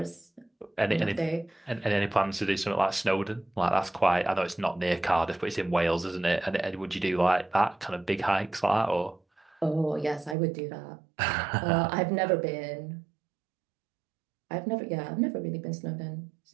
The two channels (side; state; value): left; drops out; at 10.4 s